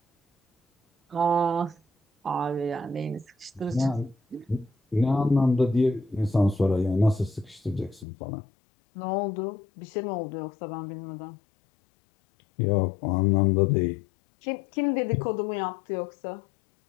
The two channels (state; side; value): drops out; right; at 8.1 s